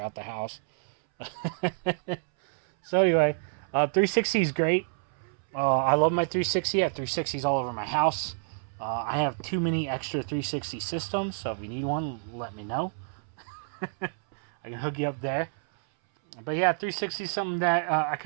the house. So, anyway, 360 is great. I love my 360. I have 360s all over my house. I have too many extra 360 systems, so if you need one, let me know. I can hook you up there. But yeah, 360 is something that I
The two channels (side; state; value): left; silent; 59 dB below the other